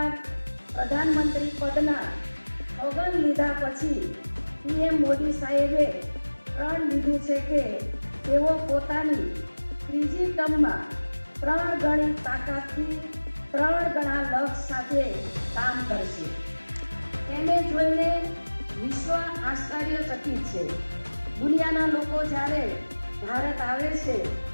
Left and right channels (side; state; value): both; inverted; correlation -1.00